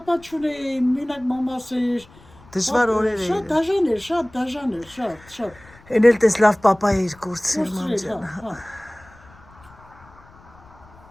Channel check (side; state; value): left; noise; rumble, 25 dB below the sound